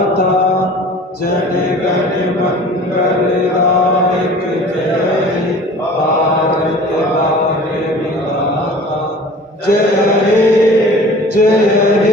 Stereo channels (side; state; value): both; normal; correlation 0.44